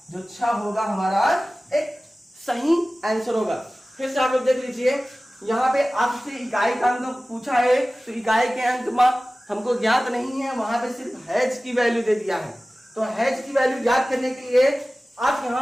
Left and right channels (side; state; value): both; normal; correlation 0.97